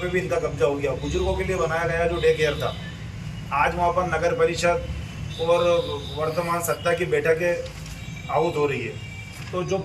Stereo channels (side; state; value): both; identical; correlation 1.00